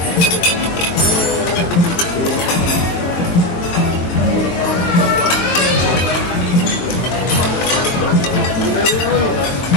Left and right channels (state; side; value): late; right; 22 ms